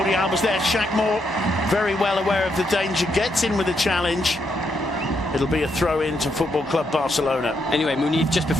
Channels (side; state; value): both; normal; correlation 0.78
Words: Alba's there. Shaq Moore, very well aware of the danger, gets in with a challenge. It'll be a throw-in to Football Club Barcelona. Anyway, Muñiz, just